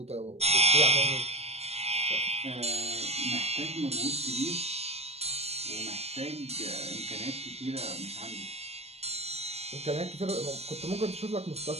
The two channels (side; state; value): left; late; 0.30 ms